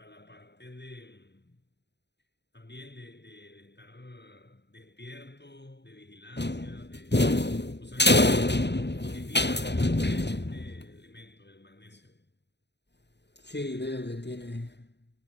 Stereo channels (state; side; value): late; right; 0.50 ms